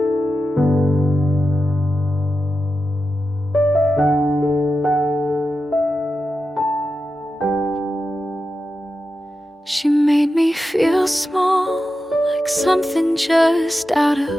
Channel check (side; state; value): both; normal; correlation 0.91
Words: She made me feel small, like something just out